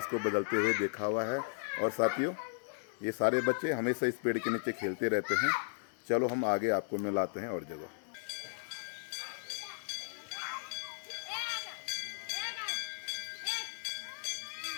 को बदलते हुए देखा हुआ है। और साथियों, ये सारे बच्चे हमेशा इस पेड़ के नीचे खेलते रहते हैं। चलो हम आगे आपको मिलाते हैं और जगह।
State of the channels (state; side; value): silent; right; 54 dB below the other